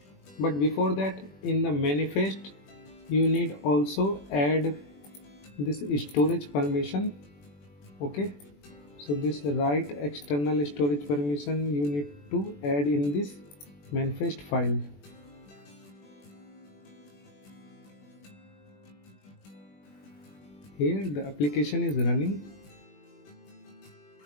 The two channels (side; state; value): right; late; 21 ms